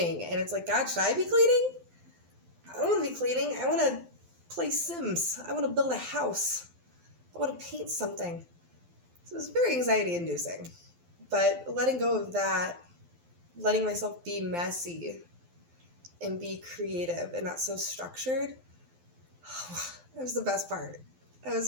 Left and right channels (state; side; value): late; left; 12 ms